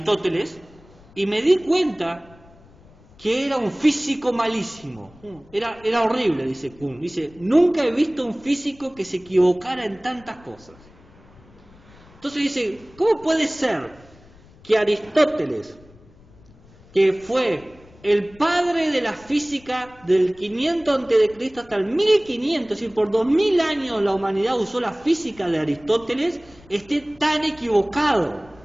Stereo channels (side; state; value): left; noise; rumble, 25 dB below the sound